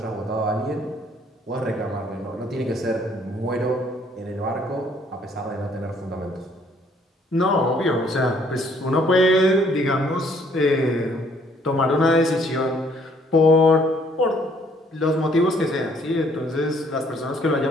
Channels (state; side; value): normal; both; correlation 0.64